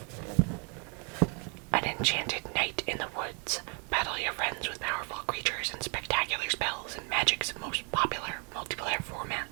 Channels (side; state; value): left; quieter; 35.9 dB